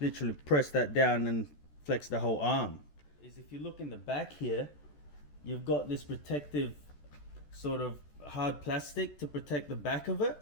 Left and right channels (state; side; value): late; right; 14 ms